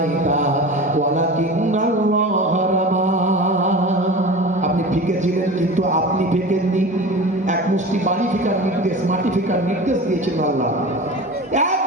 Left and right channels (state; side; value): normal; both; correlation 0.33